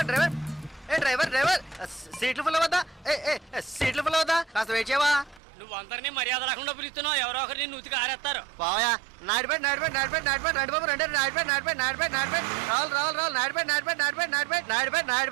డ్రైవర్ ఏ డ్రైవర్ డ్రైవర్ సీట్లు ఫుల్ అవుతా ఏ ఏ సీట్లు ఫుల్ అవుతా కాస్త వెయిట్ చేయవా నువ్వు అందరినీ మర్యాద రాకుండా పిలుస్తున్నావు ఎవరో ఒకరిని నూతికి ఆరేస్తారు పోయా నాడిపేట నాడిపేట నాడిపేట నాడిపేట నడిబాబు రెండు నాడిపేట నాడిపేట నాడిపేట నాడిపేట రావాలి రావాలి రావాలి నాడిపేట నాడిపేట నాడిపేట నాడిపేట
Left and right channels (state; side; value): drops out; left; at 5.4 s